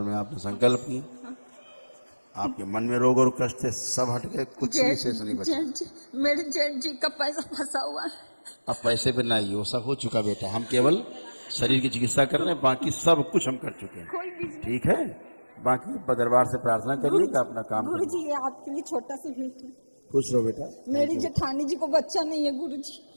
आपने संकल्प की, आपके मन में रोग और कष्ट थे, सब हट गए, कुछ भी शेष नहीं बचा। मेरे जेठ जी का पैसा फंसा हुआ है। अब पैसे पे ना, वो सब हो चुका बेटा, हम केवल शरीर की चिकित्सा कर रहे हैं, बाकी सब कुछ हम कर चुके हैं, ठीक है? बाकी दरबार से प्रार्थना करिए कि अपना काम करिए। गुरुजी ये आपके लिए छोटा सा गिफ्ट है। खुश रहो बेटा। मेरी जेठानी जी को बच्चा नहीं है गुरुजी।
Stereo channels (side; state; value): both; inverted; correlation -1.00